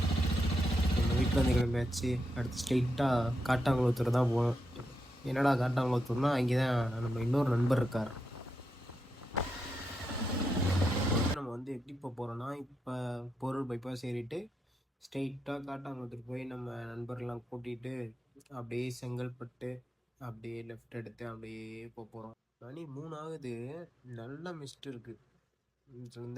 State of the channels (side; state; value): both; normal; correlation 0.84